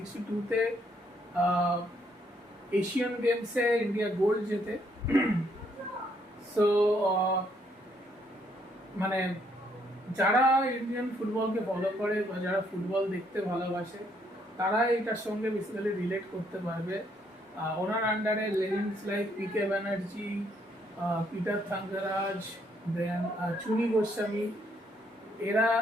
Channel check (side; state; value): both; normal; correlation 0.71